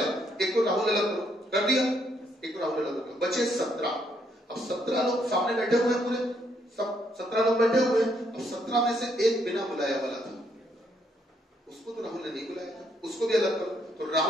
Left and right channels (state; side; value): normal; both; correlation 0.73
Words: एक को राहुल अलग करो, कर दिया, एक को राहुल अलग करो, बचे 17। अब 17 लोग सामने बैठे हुए हैं, पूरे सब 17 लोग बैठे हुए हैं। अब 17 में से एक बिना बुलाया वाला था, उसको तो राहुल ने नहीं बुलाया था, उसको भी अलग करो। तो